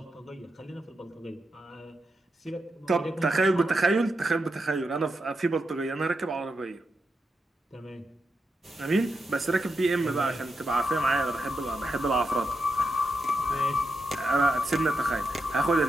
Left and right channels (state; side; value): normal; both; correlation 0.86